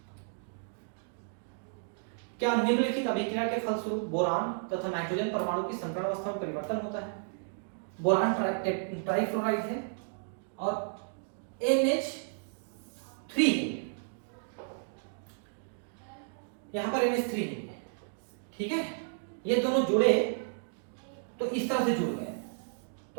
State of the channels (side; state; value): left; silent; digital silence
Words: क्या निम्नलिखित अभिक्रिया के फलस्वरूप बोरान तथा नाइट्रोजन परमाणु की संकरण अवस्था में परिवर्तन होता है? बोरान ट्राइफ्लोराइड है और NH3 है, यहां पर NH3 है, ठीक है। ये दोनों जुड़े तो इस तरह से जुड़ गए।